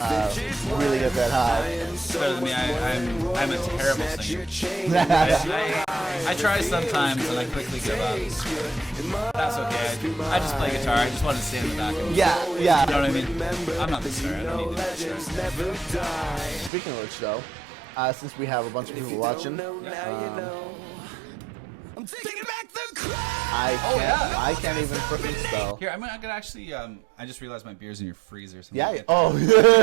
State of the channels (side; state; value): left; drops out; at 16.7 s